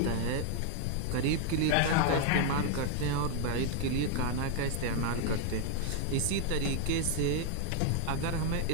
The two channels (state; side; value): different; both; correlation 0.00